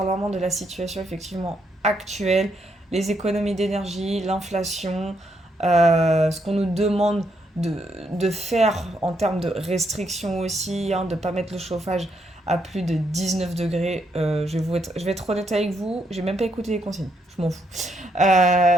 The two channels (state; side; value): normal; both; correlation 0.76